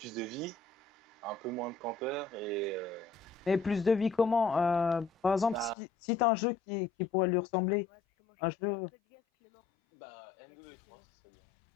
de vie, un peu moins de campeurs et Mais plus de vie comment? Par exemple, bah, si tu as un jeu qui pourrait lui ressembler, Ouais, parce que moi, un je suis un jeu. peu de gaz qui est mort. M2E3, ce serait bien.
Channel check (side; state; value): right; drops out; at 5.8 s